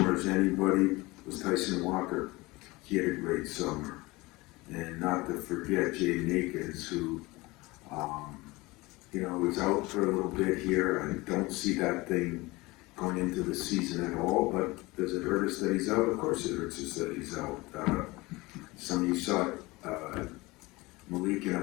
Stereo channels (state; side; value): quieter; right; 22.1 dB